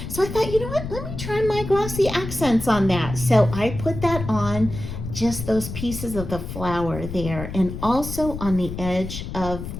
So I thought, you know what, let me try my glossy accents on that. So I put that on just those pieces of the flower there, and also on the edge of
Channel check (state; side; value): noise; left; rumble, 8 dB below the sound